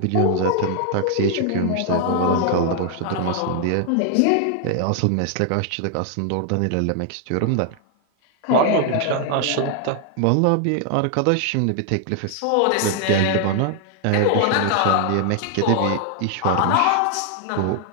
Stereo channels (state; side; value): different; both; correlation 0.00